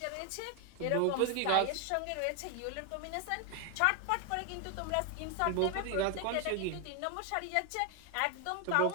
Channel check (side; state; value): both; different; correlation 0.01